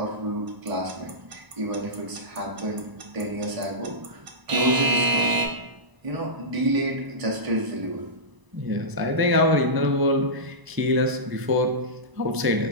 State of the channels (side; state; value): left; late; 1.0 ms